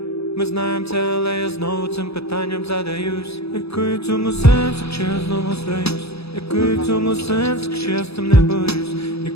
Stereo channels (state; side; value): late; right; 0.78 ms